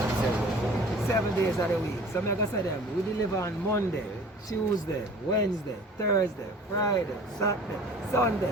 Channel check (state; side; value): normal; both; correlation 0.46